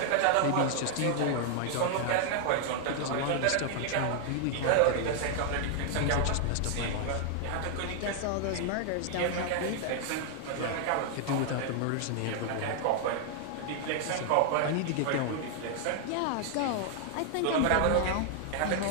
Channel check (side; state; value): both; different; correlation 0.00